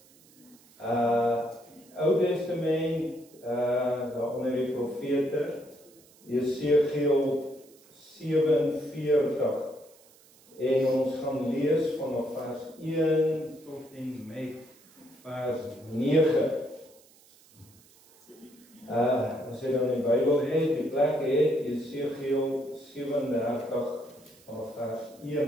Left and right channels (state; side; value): noise; right; hiss, 27 dB below the sound